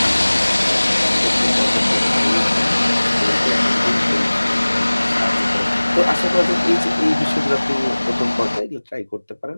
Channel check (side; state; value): both; inverted; correlation -1.00